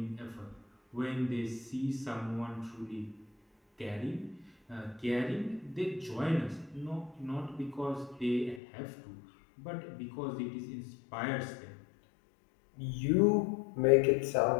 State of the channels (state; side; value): drops out; right; at 8.6 s